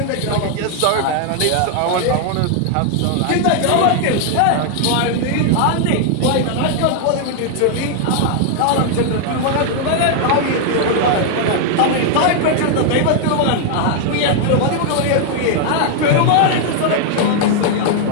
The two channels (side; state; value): both; different; correlation 0.00